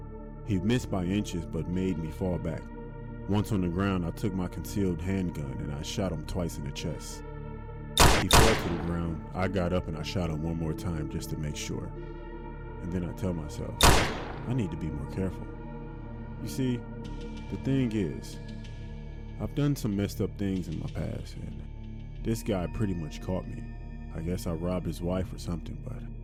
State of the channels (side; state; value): both; identical; correlation 1.00